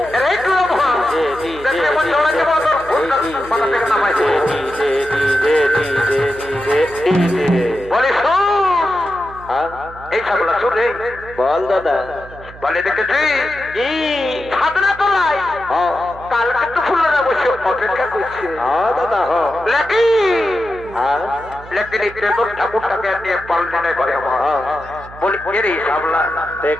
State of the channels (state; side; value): noise; right; hum, 17 dB below the sound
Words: রে দেখলে মন জড়া যাবো তোর মাথা থেকে নামাইছে। বলে শোন এই ছাগলা শোন রে বল দাদা। বলে দেখেছি ঝাড়না তোলাই কাল কিন্তু ফুলরা বসে অপেক্ষা করছে। দাদা লেকি ঠাকুরটাকে নিয়ে পালনে করে বলি রে সাবলা